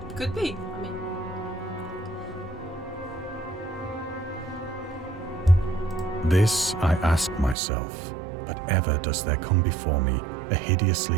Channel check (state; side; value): drops out; left; at 7.6 s